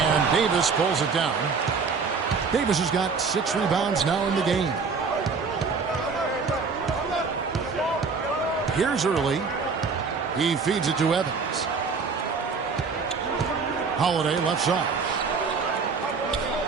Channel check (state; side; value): quieter; left; 5.0 dB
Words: Davis pulls it down. Davis has got 6 rebounds now in the game. Here's Early. He feeds it to Evans. Holiday left side.